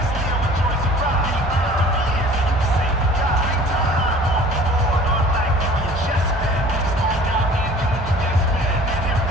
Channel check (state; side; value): normal; both; correlation 0.48